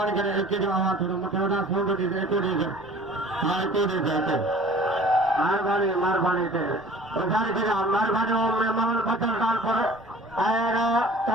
करे एक के जो आवा थोड़ा मथे वडा फोन दे एक को दे हां एक को दे जाते मार बानी दे और सारे के मार बानी में महल बचल काल पर आएगा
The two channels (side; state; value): left; noise; rumble, 25 dB below the sound